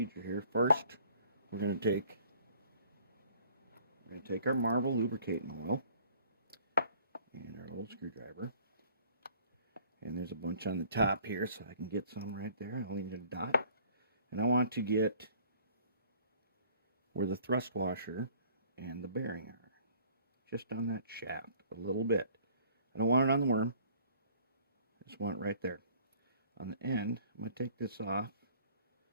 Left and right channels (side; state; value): both; inverted; correlation -0.55